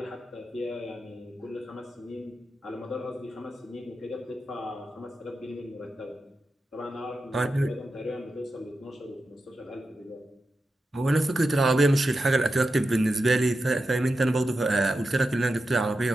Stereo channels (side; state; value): both; normal; correlation 0.90